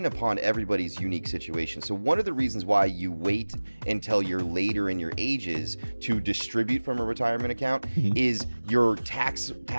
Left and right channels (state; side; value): inverted; both; correlation -1.00